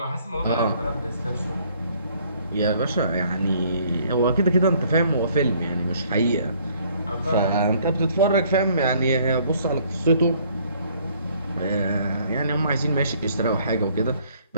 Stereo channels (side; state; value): both; inverted; correlation -0.61